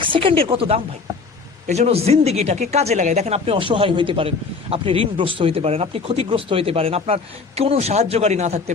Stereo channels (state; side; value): quieter; right; 4.6 dB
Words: সেকেন্ডের কত দাম ভাই। এই জন্য জিন্দিগিটাকে কাজে লাগাই। দেখেন, আপনি অসহায় হইতে পারেন, আপনি ঋণগ্রস্ত হইতে পারেন, আপনি ক্ষতিগ্রস্ত হইতে পারেন, আপনার কোনো সাহায্যকারী না থাকতে